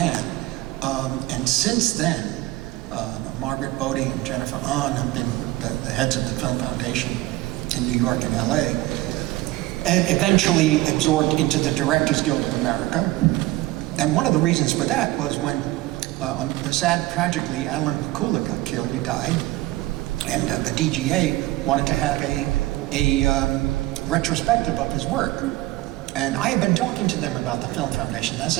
And since then, Margaret Bodie and Jennifer Ahn have been the heads of the Film Foundation in New York and LA, and eventually absorbed into the Directors Guild of America. And one of the reasons for that was when, tragically, Alan Pakula got killed, he died, and the DGA wanted to have a retrospective of his work. And I have been talking to them about the Film Foundation. This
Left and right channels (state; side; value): quieter; left; 18.2 dB